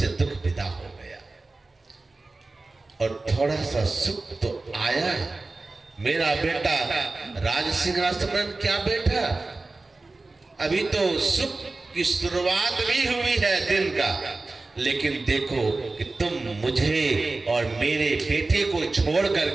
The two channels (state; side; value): quieter; left; 3.4 dB